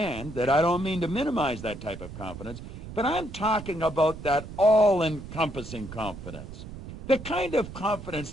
that I don't mean to minimize that type of confidence, but I'm talking about that all-encompassing confidence. The kind of confidence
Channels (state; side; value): noise; right; rumble, 12 dB below the sound